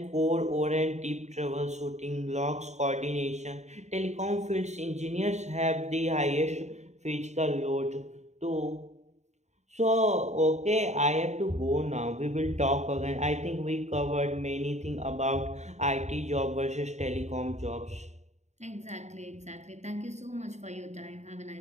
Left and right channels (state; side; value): late; left; 0.33 ms